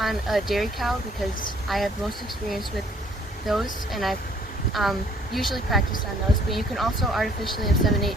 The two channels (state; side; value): normal; both; correlation 0.60